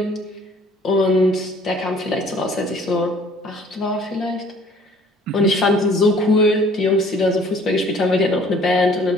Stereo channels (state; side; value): normal; both; correlation 0.55